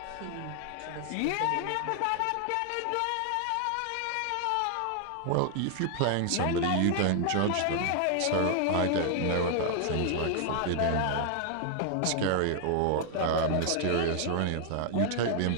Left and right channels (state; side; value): different; both; correlation 0.00